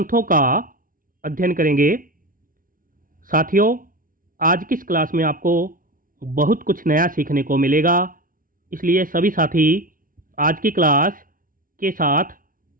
का अध्ययन करेंगे। साथियों, आज की इस क्लास में आपको बहुत कुछ नया सीखने को मिलेगा, इसलिए सभी साथी आज की क्लास के साथ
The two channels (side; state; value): left; late; 0.40 ms